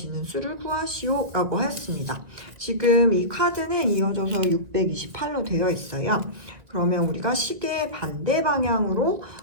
수를 구하시오 라고 하였습니다. 지금 이 카드는 이어져서 628로 되어 있어요. 그러면 우리가 시계 반대 방향으로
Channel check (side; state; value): left; late; 1.9 ms